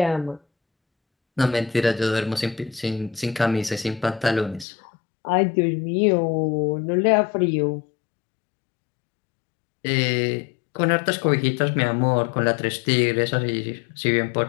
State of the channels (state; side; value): drops out; right; at 4.7 s